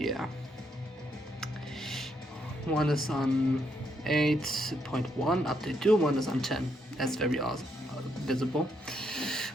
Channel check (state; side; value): normal; both; correlation 0.76